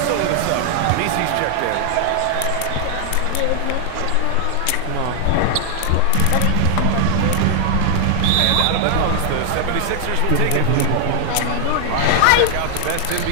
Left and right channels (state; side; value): different; both; correlation 0.00